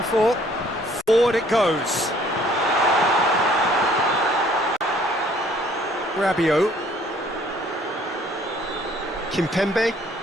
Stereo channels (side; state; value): both; normal; correlation 0.59